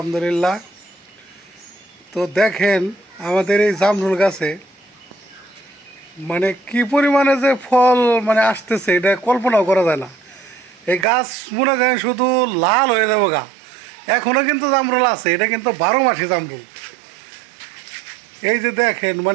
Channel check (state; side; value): drops out; left; at 11.1 s